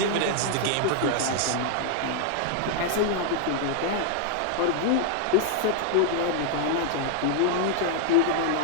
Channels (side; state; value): both; different; correlation 0.00